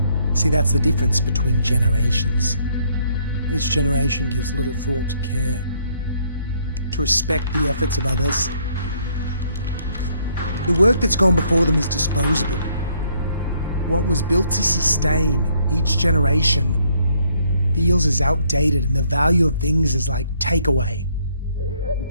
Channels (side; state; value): both; inverted; correlation -0.68